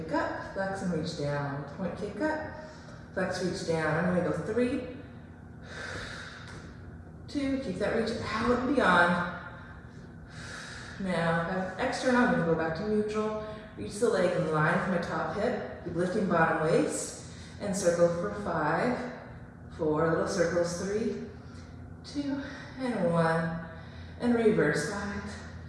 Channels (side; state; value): both; identical; correlation 1.00